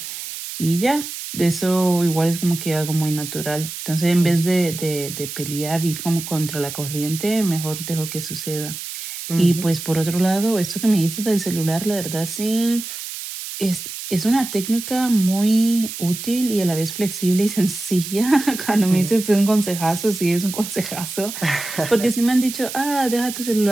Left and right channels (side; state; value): right; noise; hiss, 8 dB below the sound